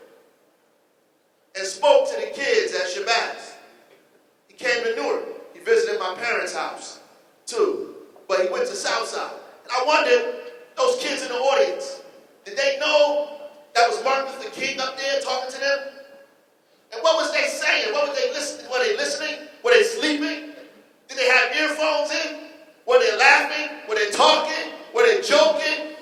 and spoke to the kids at Shabazz. He came to Newark. He visited my parents' house, too. But he went to Southside. And I wondered, those kids in the audience, did they know that was Martin Luther King up there talking to them? And what was they saying? What were they listening? Were they listening? Were they sleeping? Did they have earphones in? Were they laughing? Were they talking? Were they joking?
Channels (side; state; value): both; identical; correlation 1.00